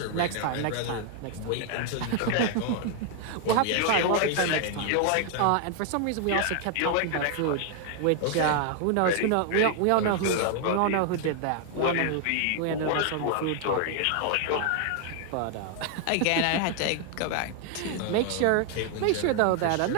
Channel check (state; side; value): different; both; correlation 0.00